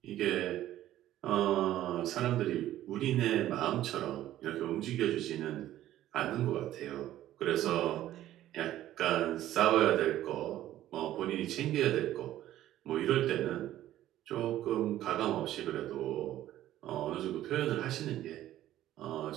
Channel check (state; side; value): quieter; left; 13.4 dB